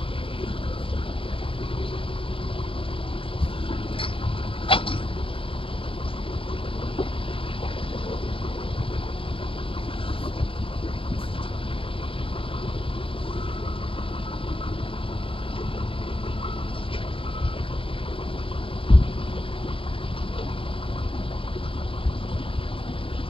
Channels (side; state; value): right; late; 0.26 ms